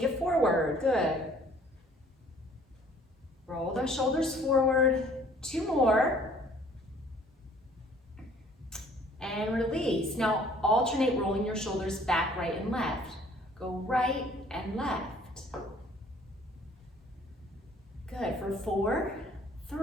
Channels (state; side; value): normal; both; correlation 0.56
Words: it forward. Good. Roll those shoulders forward. Two more. And release. Now alternate rolling your shoulders back, right, and left. Go right and left. Good. For 4,